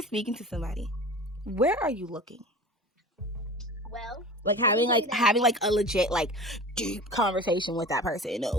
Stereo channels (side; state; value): both; normal; correlation 0.36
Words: speaking to somebody, where are you looking? Well, like having a legit deep conversation with that person.